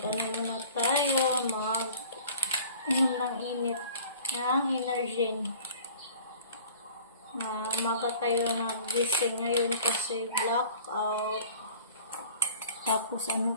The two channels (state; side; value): inverted; both; correlation -0.47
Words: muna tayo, mag-inom ng init ng Energen. Umaga tayo nagising ngayon kasi blackout. Tapos ano